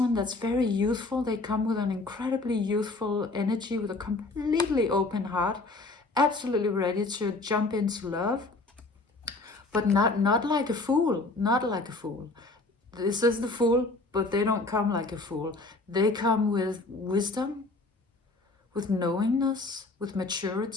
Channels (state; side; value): quieter; right; 3.3 dB